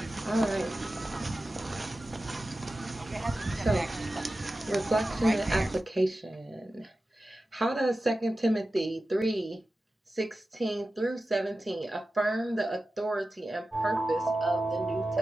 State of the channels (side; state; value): both; normal; correlation 0.94